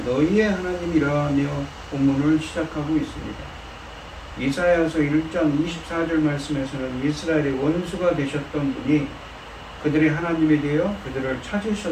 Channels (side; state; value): both; identical; correlation 1.00